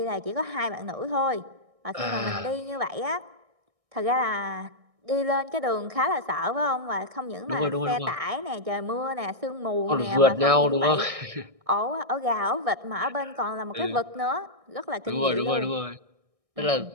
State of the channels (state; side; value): late; left; 1.6 ms